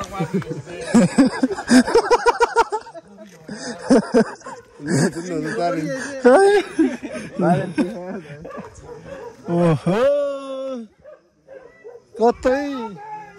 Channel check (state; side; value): identical; both; correlation 1.00